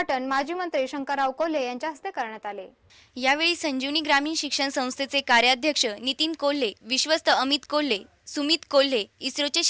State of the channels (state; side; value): identical; both; correlation 1.00